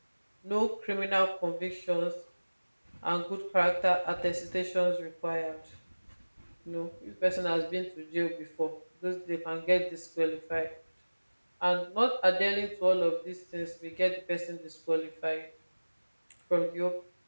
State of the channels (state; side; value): inverted; both; correlation -1.00